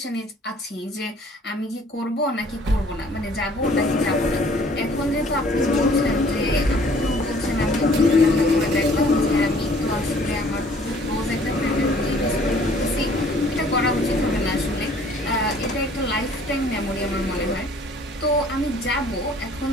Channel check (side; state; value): both; normal; correlation 0.56